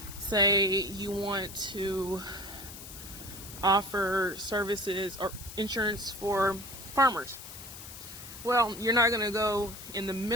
say you want to offer services or insurance for farmers. Well, you're not going to go in the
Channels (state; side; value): noise; left; hiss, 13 dB below the sound